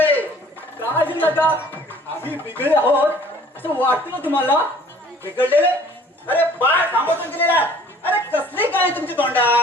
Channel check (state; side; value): normal; both; correlation 0.53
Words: काय झालं का आम्ही बिघडले आहोत असं वाटतं ना तुम्हाला? बिघडलेले? अरे बाळ थांबवून गेलेला. अरे कसली काय तुमची